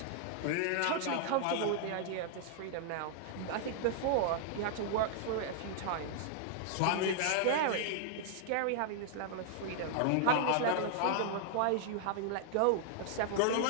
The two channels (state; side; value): different; both; correlation -0.01